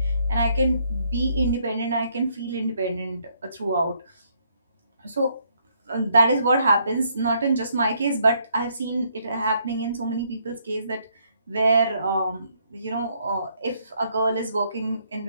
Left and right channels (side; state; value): both; inverted; correlation -0.70